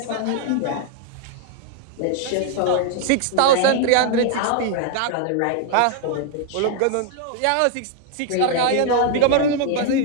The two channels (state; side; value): different; both; correlation 0.00